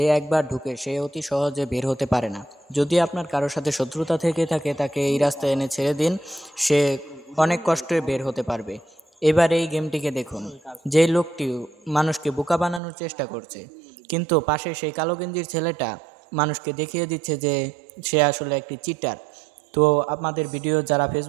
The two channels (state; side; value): drops out; left; at 12.8 s